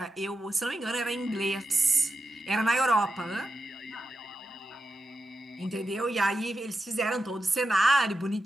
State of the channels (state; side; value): normal; both; correlation 0.89